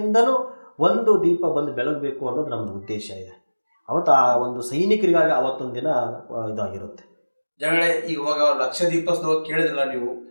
ಒಂದು ದೀಪ ಬಂದು ಬೆಳಗಬೇಕು ಅನ್ನೋದು ನಮ್ಮದು ಉದ್ದೇಶ ಇದೆ. ಅವತ್ತು ಆ ಒಂದು ಸೈನಿಕರಿಗಾಗಿ ಅವತ್ತೊಂದು ದಿನ ಇದಾಗಿರುತ್ತೆ. ಜನಗಳೇ, ಇವಾಗ ಲಕ್ಷ ದೀಪೋತ್ಸವ ಕೇಳಿದ್ರಲ್ಲ ನೀವು,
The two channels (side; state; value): both; inverted; correlation -1.00